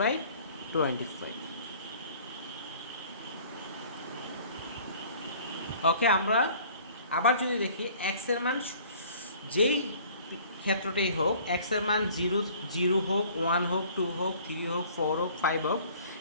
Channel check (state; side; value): inverted; both; correlation -0.52